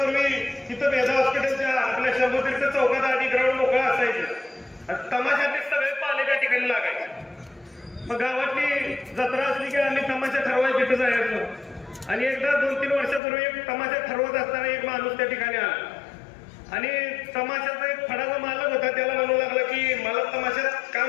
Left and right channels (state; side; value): drops out; right; at 13.2 s